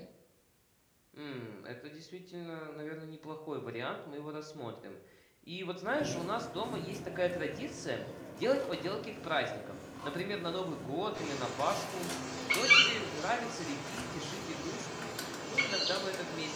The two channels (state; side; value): identical; both; correlation 1.00